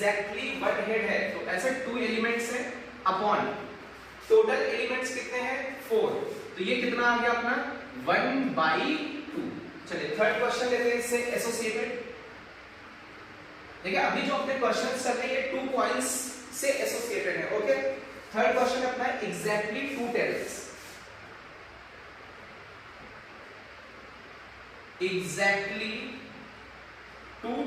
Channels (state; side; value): identical; both; correlation 1.00